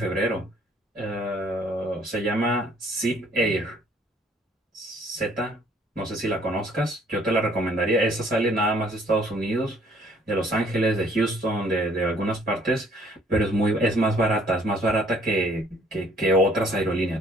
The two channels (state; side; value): normal; both; correlation 0.60